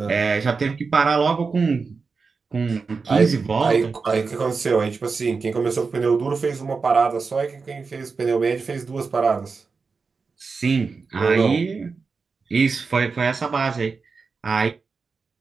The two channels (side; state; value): left; quieter; 4.7 dB